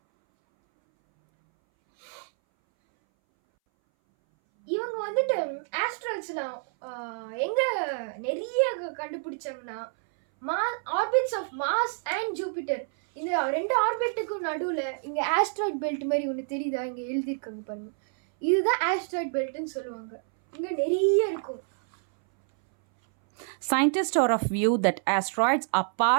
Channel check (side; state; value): left; silent; 60 dB below the other